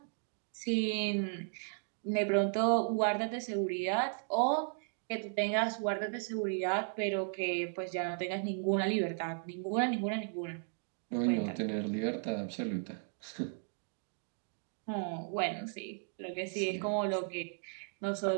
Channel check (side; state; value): left; silent; 54 dB below the other